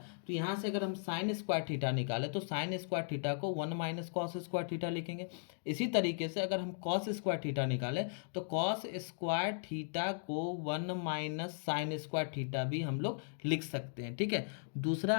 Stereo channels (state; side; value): silent; right; digital silence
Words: तो यहाँ से अगर हम साइन स्क्वायर थीटा निकालें तो साइन स्क्वायर थीटा को 1 माइनस कॉस स्क्वायर थीटा लिखेंगे। इसी तरीके से अगर हम कॉस स्क्वायर थीटा निकालें तो कॉस स्क्वायर थीटा को 1 माइनस साइन स्क्वायर थीटा भी हम लोग लिख सकते हैं, ठीक है। दूसरा